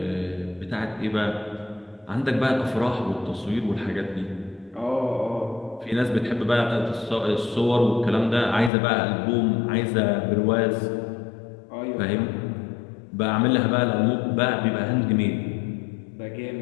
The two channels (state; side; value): drops out; right; at 8.7 s